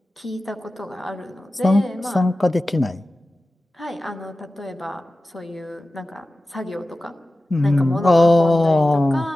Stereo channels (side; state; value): both; normal; correlation 0.95